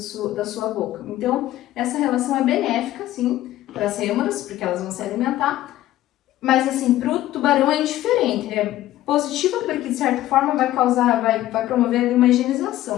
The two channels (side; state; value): right; quieter; 14.5 dB